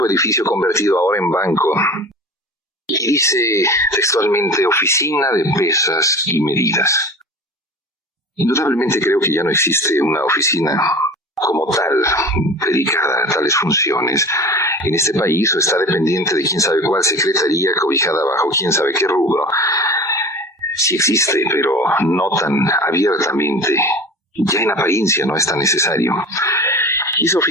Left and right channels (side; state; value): both; normal; correlation 0.36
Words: edificio convertido ahora en banco y dice textualmente Oficina de Pesas y Medidas. Indudablemente creo que ya no existe una oficina como tal, dedicada a tales funciones en este país, o está dependiente de quién sabe cuál secretaría, cobijada bajo quién sabe qué rubro. Sí existe, pero no tan abiertamente. Ya en apariencia no es tan necesario. Y esa